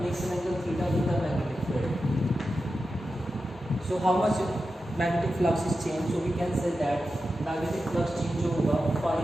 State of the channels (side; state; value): both; normal; correlation 0.91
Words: makes an angle theta in the magnetic field. So how much magnetic flux is change, so we can say that magnetic flux change जो होगा phi